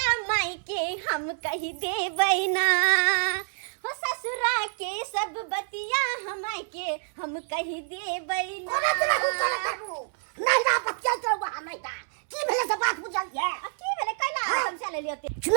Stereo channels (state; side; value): silent; left; 60 dB below the other